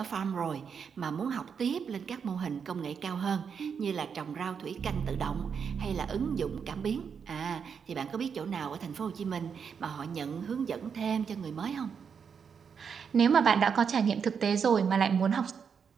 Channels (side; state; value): left; quieter; 6.6 dB